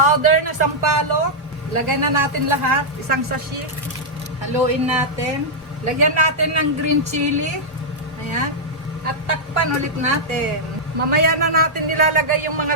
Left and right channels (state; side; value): normal; both; correlation -0.07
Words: na sampalok. Lagay na natin lahat. Isang sachet. Haluin natin. Lagyan natin ng green chili. Ayan. At takpan ulit natin. Mamaya na natin nilalagay yung